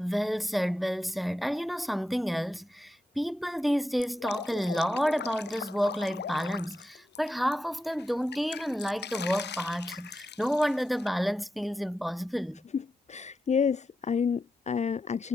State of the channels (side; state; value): both; normal; correlation 0.89